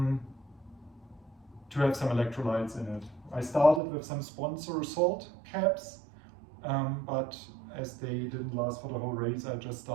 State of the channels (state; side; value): drops out; left; at 3.8 s